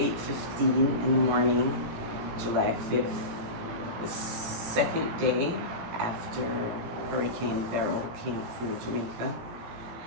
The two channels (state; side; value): late; left; 18 ms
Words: in the morning, July 5th, the second day after Hurricane Beryl came through Jamaica,